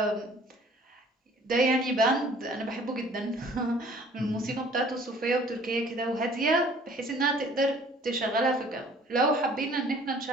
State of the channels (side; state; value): both; normal; correlation 0.53